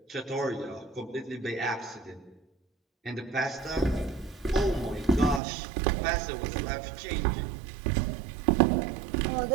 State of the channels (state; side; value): drops out; left; at 5.4 s